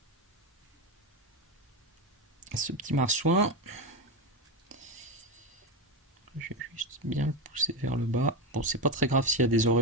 Ce petit marsouin. Je vais juste bien le pousser vers le bas. Bon, c'est pas très grave s'il y a des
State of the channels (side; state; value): both; normal; correlation 0.14